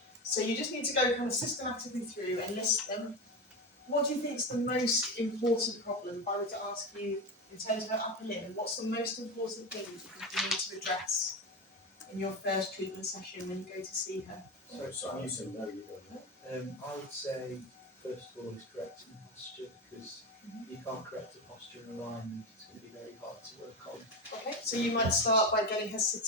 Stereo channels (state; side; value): normal; both; correlation 0.19